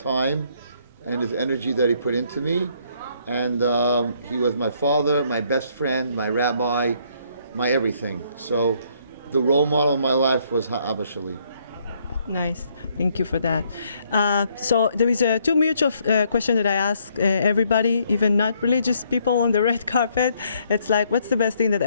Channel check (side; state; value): both; inverted; correlation -0.68